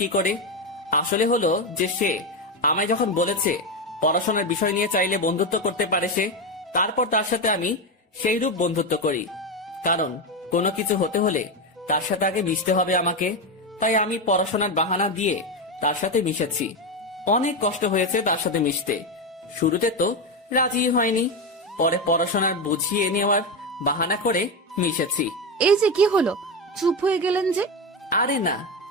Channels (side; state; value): both; normal; correlation 0.13